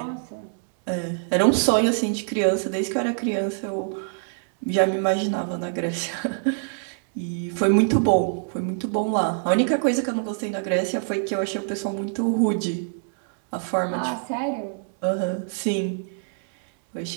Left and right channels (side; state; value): left; silent; 62 dB below the other